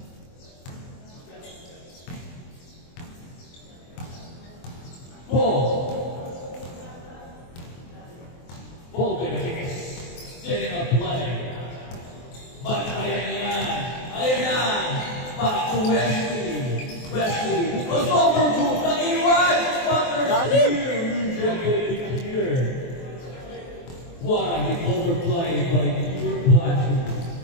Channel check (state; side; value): late; right; 23 ms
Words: Ball benefits. Setting up play. But ayan na. Back to Wesley. Wesley. Goes over to Taiwan. But there's rejected here. What an overplay by Pure Plateau.